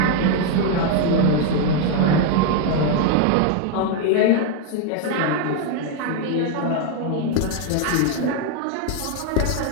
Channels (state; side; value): different; both; correlation 0.01